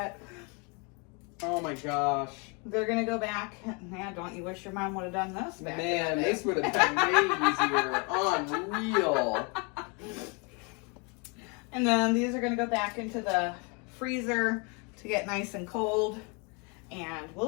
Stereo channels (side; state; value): right; quieter; 32.6 dB